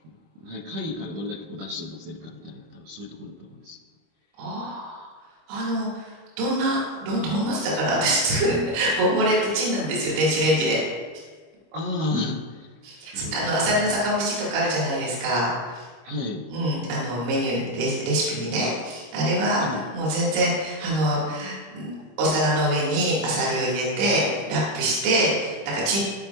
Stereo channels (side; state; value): left; late; 25 ms